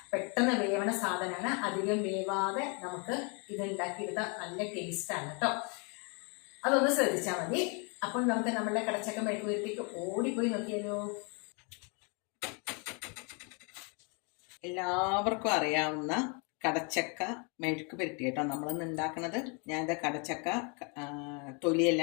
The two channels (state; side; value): quieter; right; 34.4 dB